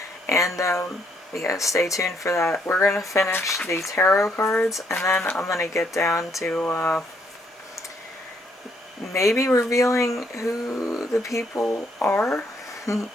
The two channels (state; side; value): normal; both; correlation 0.71